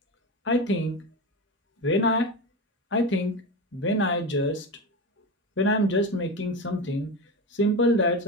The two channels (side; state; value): both; normal; correlation 0.22